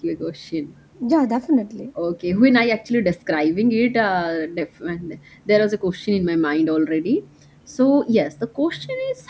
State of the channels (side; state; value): both; identical; correlation 1.00